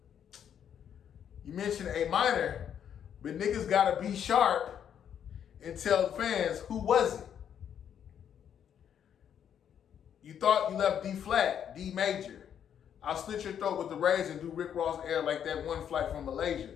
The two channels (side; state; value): right; quieter; 8.9 dB